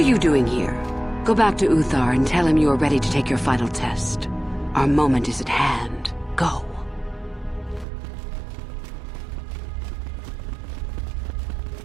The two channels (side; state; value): left; drops out; at 7.9 s